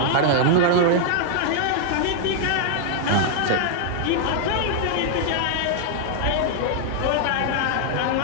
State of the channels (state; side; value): different; both; correlation 0.00